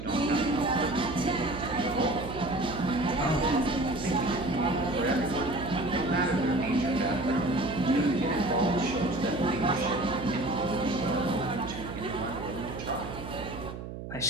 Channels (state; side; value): noise; right; hum, 9 dB below the sound